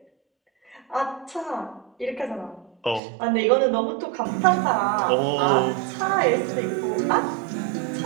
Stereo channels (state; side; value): drops out; left; at 3.0 s